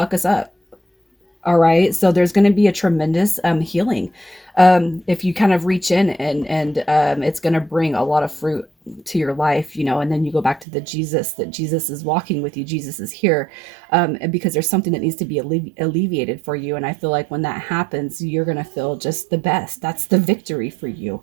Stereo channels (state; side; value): drops out; left; at 10.7 s